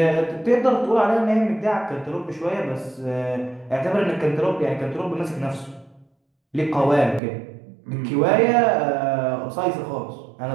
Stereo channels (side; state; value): left; drops out; at 7.2 s